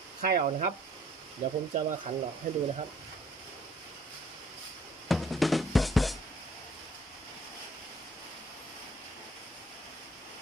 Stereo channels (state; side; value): normal; both; correlation 0.59